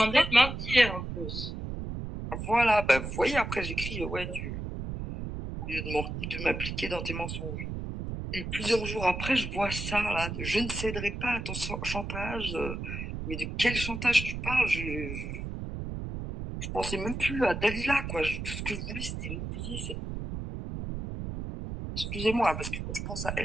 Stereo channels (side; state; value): right; noise; rumble, 6 dB below the sound